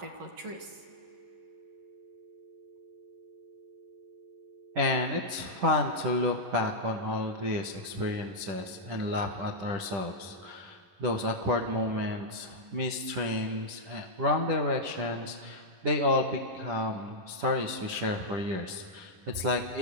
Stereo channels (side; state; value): left; late; 10 ms